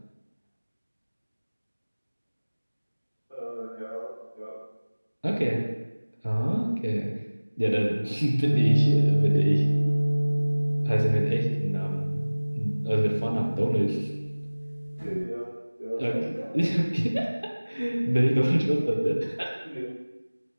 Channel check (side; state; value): both; inverted; correlation -1.00